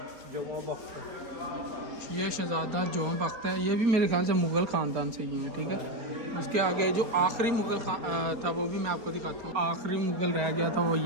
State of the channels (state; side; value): late; left; 4.3 ms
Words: ये शहज़ादा जोम बख्त है। ये भी मेरे ख्याल से मुग़ल ख़ानदान से ही हैं, ठीक है। उसके आगे जो आखिरी मुग़ल था वो भी मैं आपको दिखाता हूँ। आखिरी मुग़ल रह गया था वो